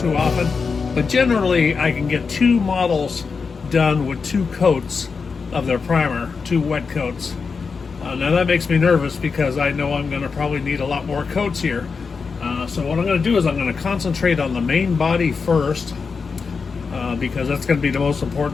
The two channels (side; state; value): right; quieter; 5.1 dB